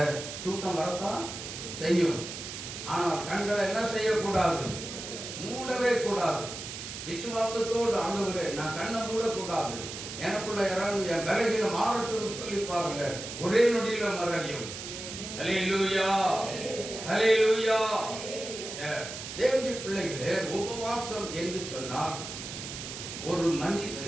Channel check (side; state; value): right; noise; hiss, 9 dB below the sound